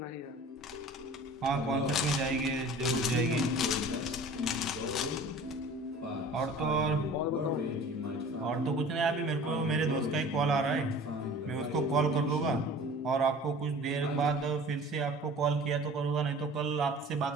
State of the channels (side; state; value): both; normal; correlation 0.44